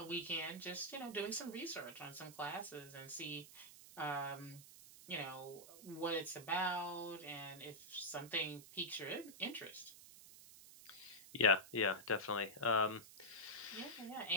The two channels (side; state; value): right; noise; hiss, 17 dB below the sound